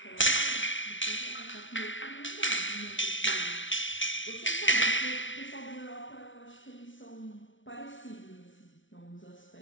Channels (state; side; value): late; right; 0.56 ms